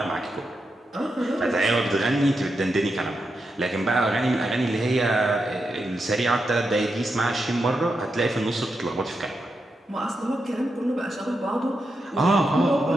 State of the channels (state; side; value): normal; both; correlation 0.86